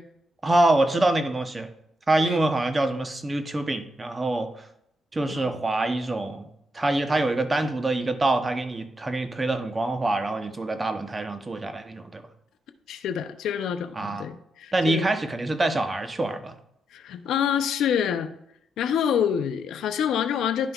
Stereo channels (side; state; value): both; normal; correlation 0.81